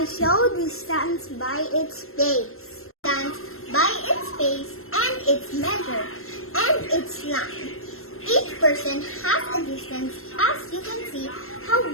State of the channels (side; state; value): right; late; 0.62 ms